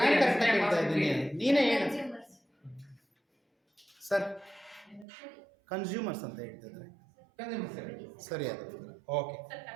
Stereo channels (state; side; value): drops out; left; at 5.1 s